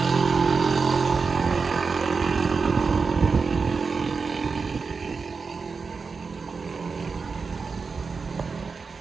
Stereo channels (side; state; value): left; quieter; 4.8 dB